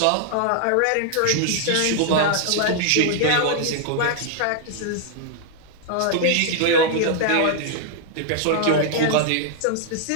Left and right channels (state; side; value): different; both; correlation 0.00